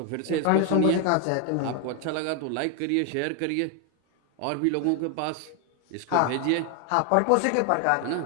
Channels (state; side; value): different; both; correlation 0.01